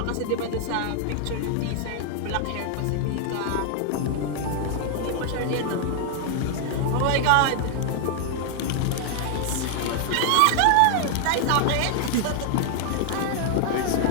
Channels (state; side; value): different; both; correlation 0.00